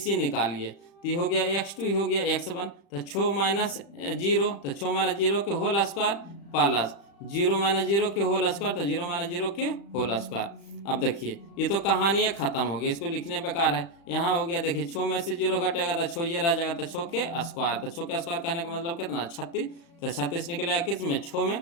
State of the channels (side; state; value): right; late; 35 ms